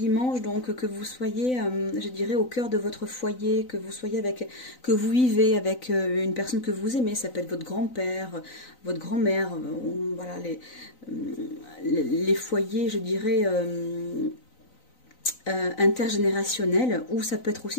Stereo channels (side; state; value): right; late; 3.9 ms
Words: donc que vous soyez, je dirais, au cœur de votre foyer, que vous vivez avec une personne que vous aimez, ça peut être votre grand-père, votre grand-mère, voilà, les foyers, je dirais, intergénérationnels, ou ça peut être